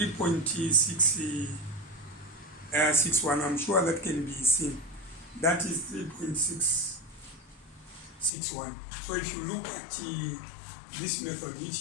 I'm sure that can be seen. That is 3.661. So if you look at this method,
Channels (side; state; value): right; drops out; at 8.3 s